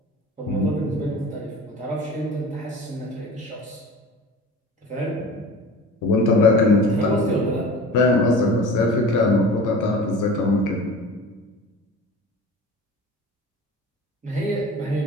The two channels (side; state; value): both; normal; correlation 0.38